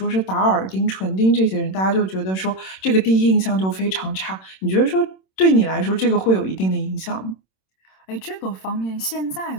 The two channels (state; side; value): late; right; 26 ms